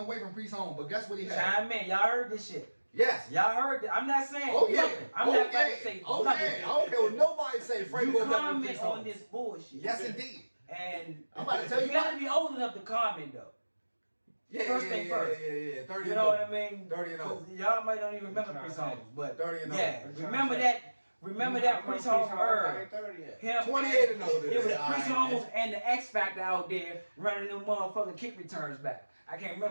from Priest Holmes, but guess what he had? Chime in. Y'all heard this shit. Yes. Y'all heard that? I'm not saying Oh yeah. nothing. I'm oh, not about yeah. to say Oh nothing. yeah. I don't care what nobody say. Frank You Gore better than comment Priest on Holmes. this bullshit. Yes, indeed. And I'm about to tell you gotta what. be old enough to comment though. Yeah, First yeah, thing yeah, first. Yeah. 30 You and know what over. I mean? 30 and over. 'Cause y'all might don't even remember What you Priest trying to Holmes, but 30 and yeah, over. remember that. Remember that Priest Holmes I era. ain't 30 yet. Him 28 and older. It was Yeah, Priest alright, Holmes and the X Factor out there running them motherfucking kick returns back. I can't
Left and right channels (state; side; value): inverted; both; correlation -1.00